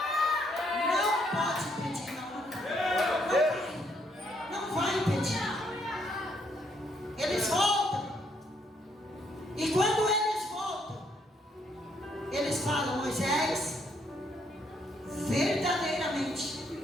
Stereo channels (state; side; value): normal; both; correlation 0.71